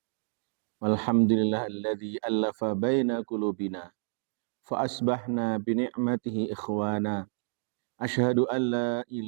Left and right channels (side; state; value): left; silent; digital silence